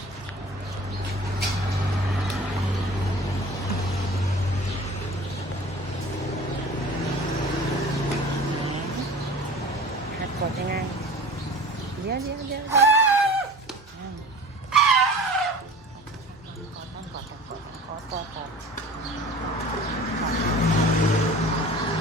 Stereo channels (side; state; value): both; normal; correlation 0.41